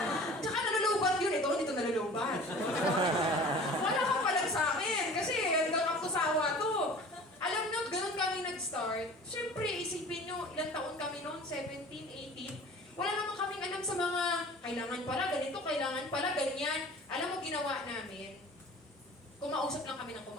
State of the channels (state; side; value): normal; both; correlation 0.43